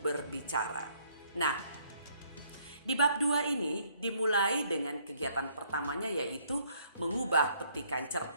Nah, di bab 2 ini dimulai dengan kegiatan pertamanya yaitu mengubah petikan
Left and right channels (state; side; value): inverted; both; correlation -0.65